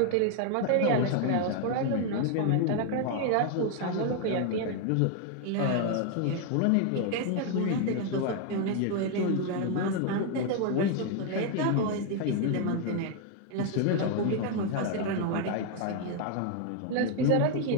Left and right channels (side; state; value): both; different; correlation 0.00